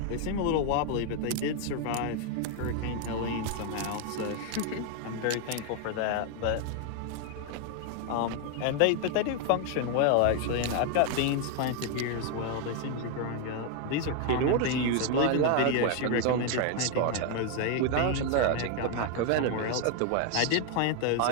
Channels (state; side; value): different; both; correlation 0.00